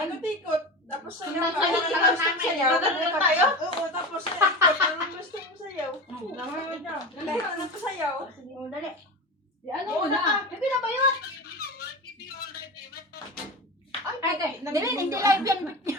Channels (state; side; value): normal; both; correlation 0.26